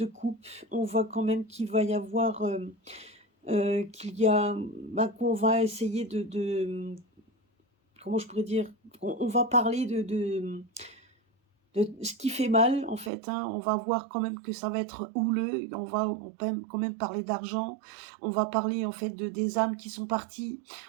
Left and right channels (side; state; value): left; drops out; at 13.1 s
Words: coupe, on voit quand même qu'il va y avoir, qu'il y a, qu'on va essayer comment je pourrais dire, on va parler de ce qui fait mal en fait, hein. On va voir quand même que ça va être houleux, on peut quand même parler d'argent, on va parler en fait des âmes qui sont parties,